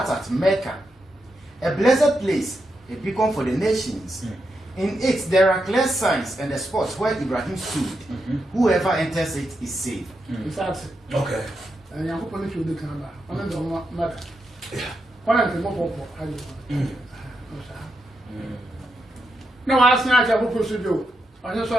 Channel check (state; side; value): normal; both; correlation 0.84